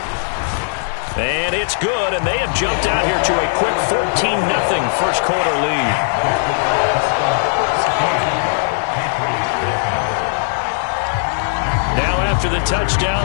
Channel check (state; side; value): silent; right; digital silence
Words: And it's good, and they have jumped out here to a quick 14-0 first quarter lead. Now after the